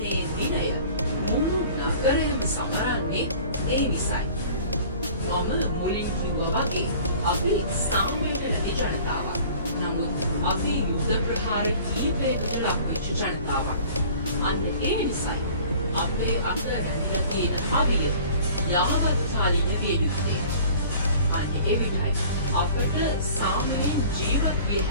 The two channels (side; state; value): both; inverted; correlation -0.47